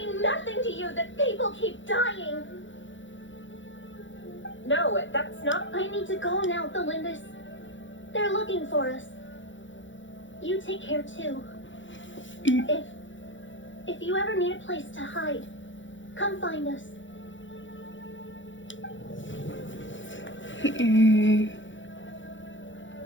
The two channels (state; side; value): late; right; 0.55 ms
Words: nothing to you that people keep dying? No, that's not... I need to go now, Valindis. They're looking for us. You take care too. If you ever need a place to hide, come find us.